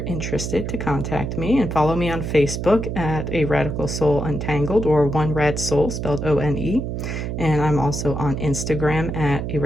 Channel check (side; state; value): right; noise; hum, 4 dB below the sound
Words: interested to contact me, and follow me on Facebook at A Radical Soul Untangled, or One Rad Soul, spelled O-N-E. And I'm also on Instagram at A